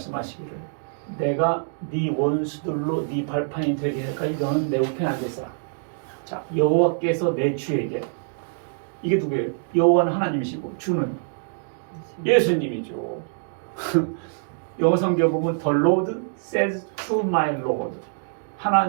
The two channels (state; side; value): silent; left; digital silence